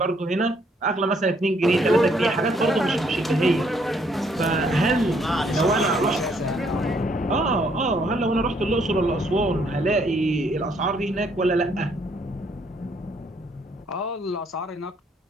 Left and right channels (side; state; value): both; normal; correlation 0.68